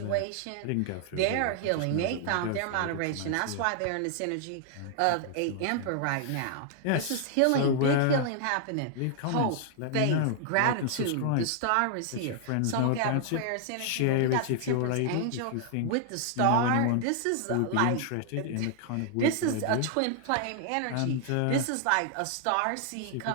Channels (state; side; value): different; both; correlation -0.01